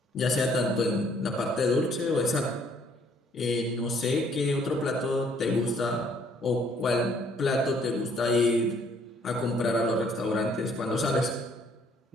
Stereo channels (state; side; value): normal; both; correlation 0.63